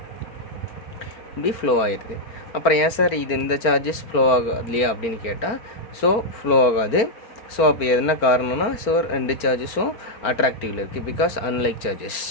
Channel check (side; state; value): right; late; 4.4 ms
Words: இப்படி ஃப்ளோ ஆயிடுது. அப்புறம் ஏன் சார் இது இந்த சார்ஜஸ் ஃப்ளோ ஆகாது இல்லையா அப்படின்னு கேட்டால், ஸோ ஃப்ளோ ஆகாது. ஸோ அப்போ என்ன காரணம்னா, ஸோ ரெண்டு சார்ஜஸும் அட்ராக்டிவில் இருக்குது, பிகாஸ் அன்லைக் சார்ஜஸ்.